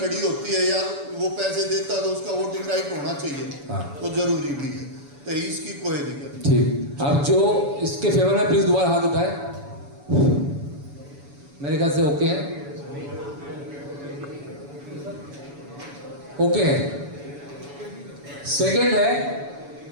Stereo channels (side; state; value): left; late; 7.0 ms